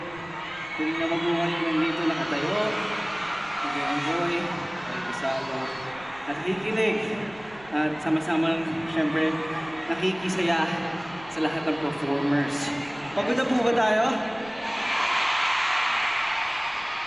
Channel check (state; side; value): noise; right; rumble, 23 dB below the sound